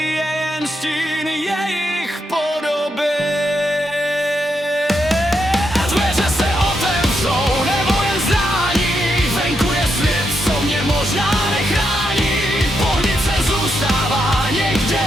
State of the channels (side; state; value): both; normal; correlation 0.82